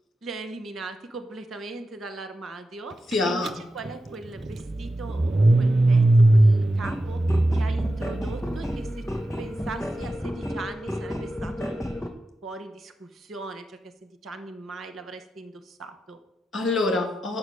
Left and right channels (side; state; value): both; normal; correlation 0.91